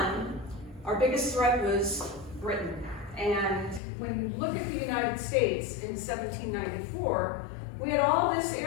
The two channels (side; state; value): right; drops out; at 3.8 s